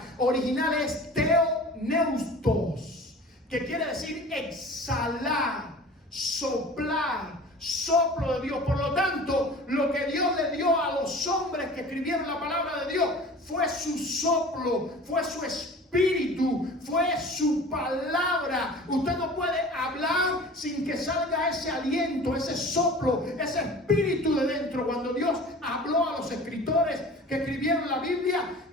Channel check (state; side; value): normal; both; correlation 0.41